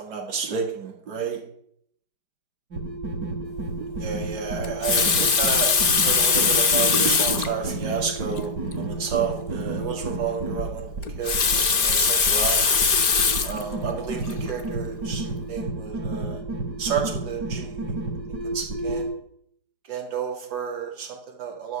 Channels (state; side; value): late; left; 5.0 ms